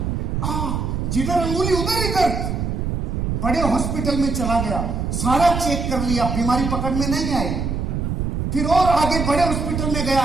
आ, जिधर अंगुली उधर ही दर्द। बड़े हॉस्पिटल में चला गया, सारा चेक कर लिया, बीमारी पकड़ में नहीं आई। फिर और आगे बड़े हॉस्पिटल में गया,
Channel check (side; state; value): right; noise; rumble, 1 dB below the sound